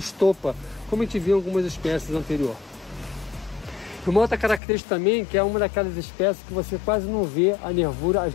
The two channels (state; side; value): drops out; right; at 4.6 s